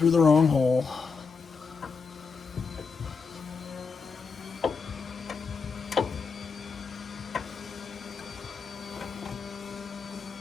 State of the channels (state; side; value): quieter; right; 5.2 dB